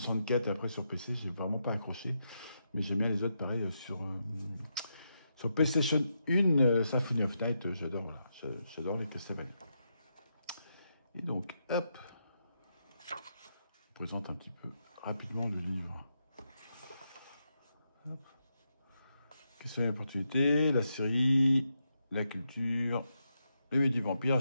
et après sur PC, j'ai vraiment pas accroché. Mais j'aime bien les autres, pareil, sur PlayStation 1, Symphony of Night, j'adore, voilà, j'adore les Castlevania. Et donc, hop, je vous présente un petit peu rapidement le livre. Hop. Castlevania Opportunité, la série, la culture, les midi-vampires, la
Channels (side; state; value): both; inverted; correlation -0.83